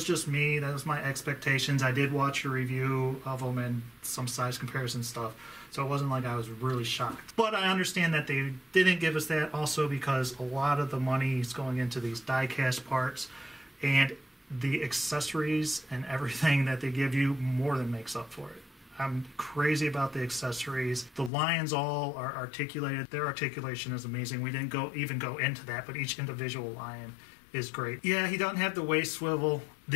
just me. That was my expectations. I did watch a review of them and some size comparison stuff, so it wasn't like I was really shocked. But I understand that they didn't give us that also because a lot of the money is going into these die-cast parts, and the accessories and everything that they give you more than makes up for it. I'm crazy about the accessories. The lions all are articulated. Their articulation is amazing. We didn't even go into that, but each individual lion is great. Yeah, he doesn't have the waist swivel.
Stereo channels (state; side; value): drops out; right; at 21.3 s